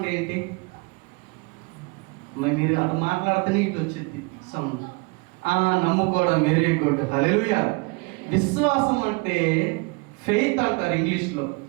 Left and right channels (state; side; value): quieter; left; 28.8 dB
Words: ఏంటి? మరి మీరు అటు మాట్లాడితేనే ఇటు వచ్చింది సౌండ్. నమ్ముకోవడం, వెరీ గుడ్. హల్లెలూయా. విశ్వాసం అంటే ఫెయిత్ అంటారు ఇంగ్లీష్లో.